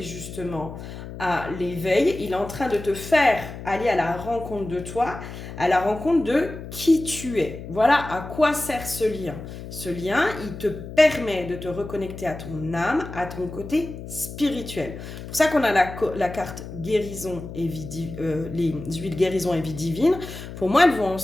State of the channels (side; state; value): left; noise; hum, 11 dB below the sound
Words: justement à l'éveil. Il est en train de te faire aller à la rencontre de toi, à la rencontre de qui tu es. Voilà à quoi sert ce lien. Ce lien, il te permet de te reconnecter à ton âme, à ton côté spirituel. C'est pour ça qu'on a la carte guérison et vie les huiles guérison et vie divine. Pour moi, elles vont